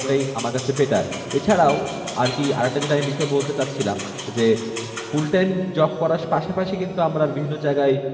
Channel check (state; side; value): identical; both; correlation 1.00